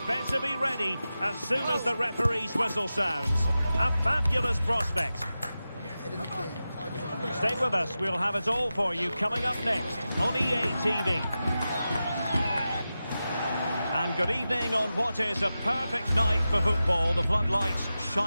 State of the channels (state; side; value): inverted; both; correlation -0.93